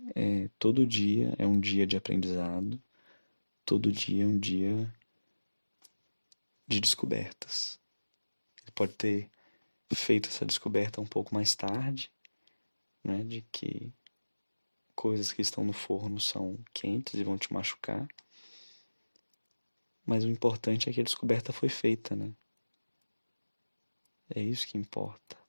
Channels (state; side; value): inverted; both; correlation -1.00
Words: Todo dia é um dia de aprendizado. Todo dia é um dia de descobertas. Ele pode ter feito essa descoberta um pouco mais tarde, né? De que coisas que estão no forno são quentes e vão te machucar. Mas o importante é que a descoberta foi feita, né? É isso que importa.